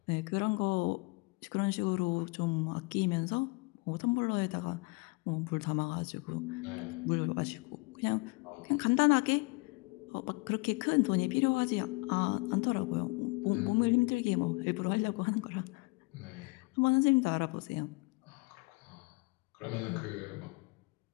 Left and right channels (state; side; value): quieter; right; 28.2 dB